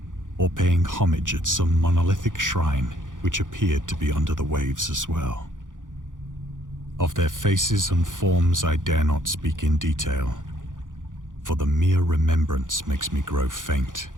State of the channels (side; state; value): left; late; 0.88 ms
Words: or paying homage at some monolithic shrine which appeared to be under the waves as well. Of their faces and forms I dare not speak in detail, for the mere remembrance makes me grow faint.